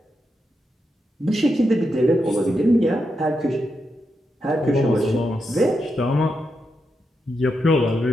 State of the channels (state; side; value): normal; both; correlation 0.85